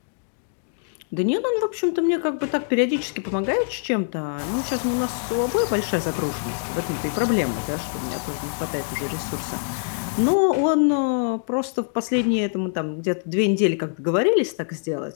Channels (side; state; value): right; silent; digital silence